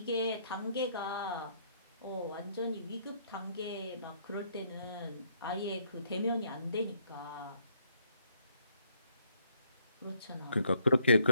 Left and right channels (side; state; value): both; inverted; correlation -0.70